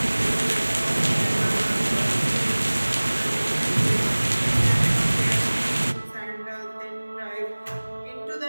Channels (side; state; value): both; inverted; correlation -1.00